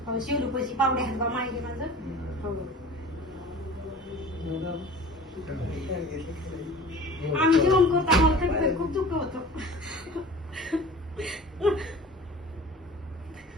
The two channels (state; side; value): normal; both; correlation 0.41